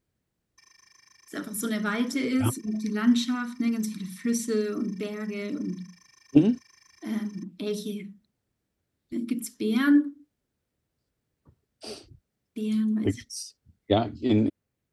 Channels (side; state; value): both; identical; correlation 1.00